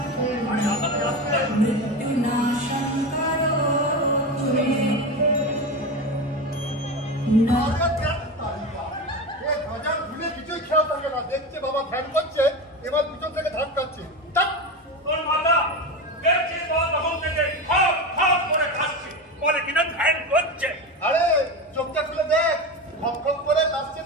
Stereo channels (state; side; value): normal; both; correlation 0.22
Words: मृत्युनाशं करोतु मे দেখছে বাবা ধ্যান করছে এবার পিছন থেকে ধাক্কাচ্ছে তোর মাথা দেখছিস বাবা তখন থেকে খপ খপ করে খাচ্ছে বলে কিনা ধ্যান করছে। আরে চোখটা খুলে দেখ খপ খপ করে কাশছে